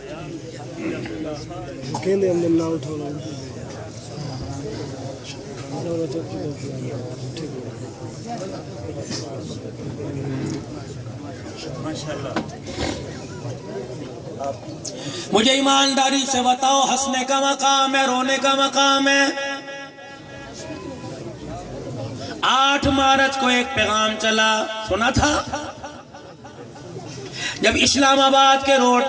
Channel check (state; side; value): identical; both; correlation 1.00